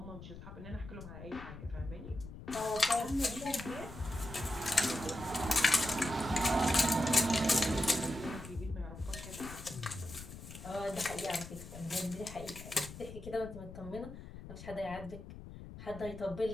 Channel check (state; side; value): noise; left; rumble, 13 dB below the sound